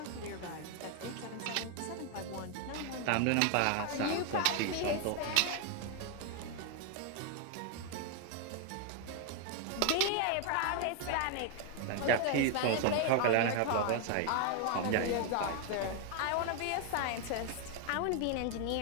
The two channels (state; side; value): different; both; correlation 0.00